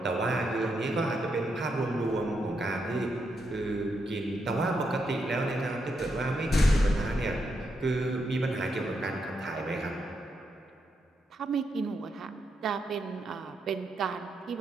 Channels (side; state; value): both; normal; correlation 0.81